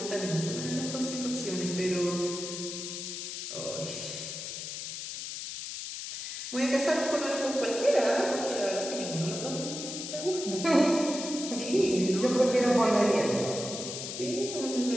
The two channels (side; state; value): left; noise; hiss, 7 dB below the sound